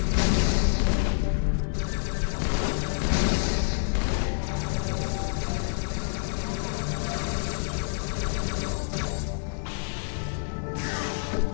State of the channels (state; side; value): silent; right; digital silence